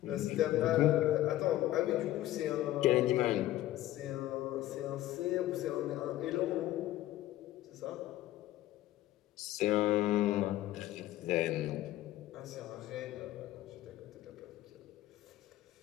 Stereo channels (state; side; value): quieter; right; 14.6 dB